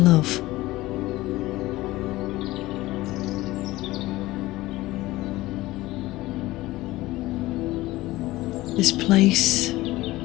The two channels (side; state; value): right; quieter; 18.1 dB